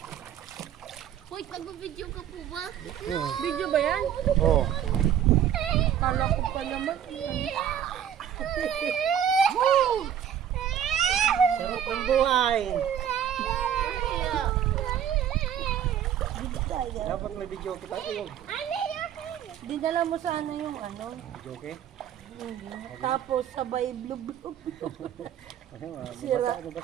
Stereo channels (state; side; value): quieter; left; 9.7 dB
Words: Hoy, nag-video ka po ba? Oo. Video ba yan? Oh. Kala ko pa naman. Sarap ng buhay. Dapat may video kita. Dinala mo sana yung ano. Video okay? Tapos sabay blub-blub. Sira.